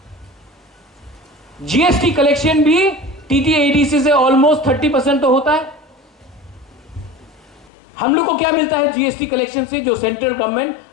जीएसटी कलेक्शन भी टीटीएडीसी से ऑलमोस्ट 30% तो होता है। हम लोग को क्या मिलता है जीएसटी कलेक्शन से? जो सेंट्रल गवर्नमेंट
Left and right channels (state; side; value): drops out; right; at 7.7 s